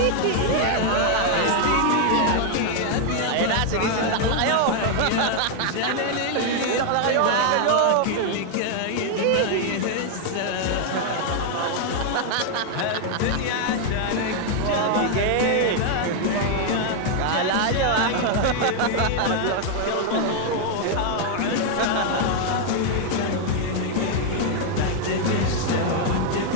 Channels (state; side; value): different; both; correlation 0.00